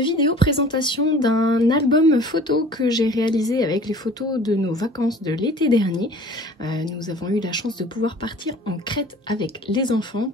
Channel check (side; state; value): both; normal; correlation 0.46